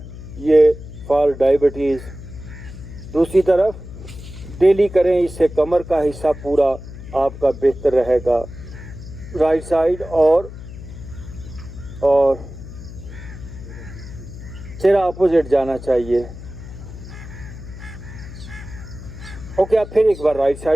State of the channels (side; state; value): left; noise; hum, 13 dB below the sound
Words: ये फॉर डायबिटीज़। दूसरी तरफ डेली करें, इससे कमर का हिस्सा पूरा आपका बेहतर रहेगा। राइट साइड और चेहरा अपोजिट जाना चाहिए। ओके, आप फिर एक बार राइट